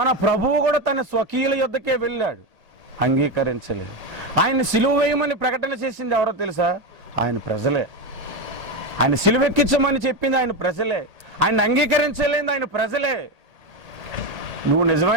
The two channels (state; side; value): late; left; 1.9 ms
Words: ప్రభువు కూడా తన స్వకీయుల యొద్దకే వెళ్ళాడు, అంగీకరించలేదు. ఆయన సిలువ వేయమని ప్రకటన చేసింది ఎవరో తెలుసా? ఆయన ప్రజలే. ఆయన సిలువెక్కించమని చెప్పింది ఆయన ప్రజలే. ఆయన అంగీకరించలేదు ఆయన ప్రజలే. నువ్వు